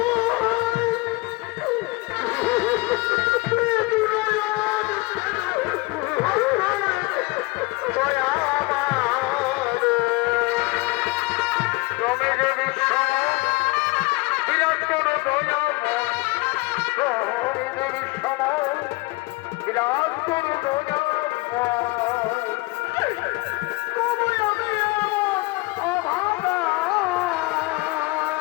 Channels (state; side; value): quieter; right; 23.4 dB